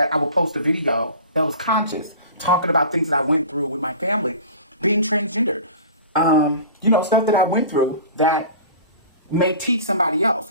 I would post a video that was conscious, talking about things that I went through with my family, being transgendered, stuff that I went through that may teach somebody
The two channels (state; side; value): inverted; both; correlation -0.40